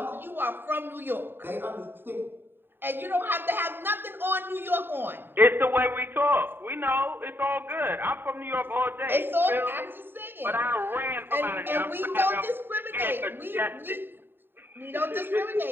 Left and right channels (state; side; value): late; left; 0.098 ms